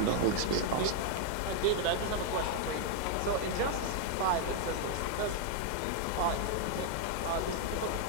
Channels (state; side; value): different; both; correlation 0.00